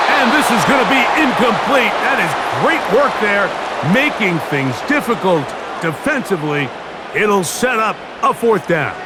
And this is going to be incomplete. That is great work there, making things difficult defensively. It'll set up a 4th down.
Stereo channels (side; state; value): both; identical; correlation 1.00